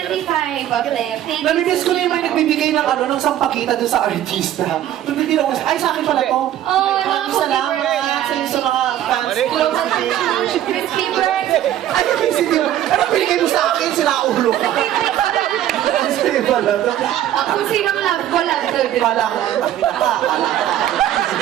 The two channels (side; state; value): left; quieter; 12.0 dB